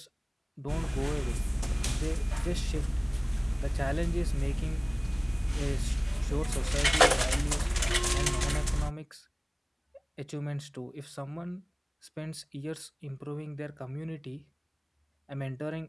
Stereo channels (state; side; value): identical; both; correlation 1.00